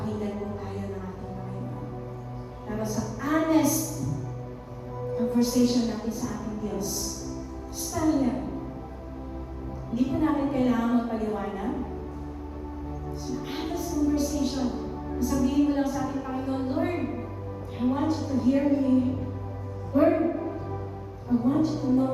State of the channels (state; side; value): identical; both; correlation 1.00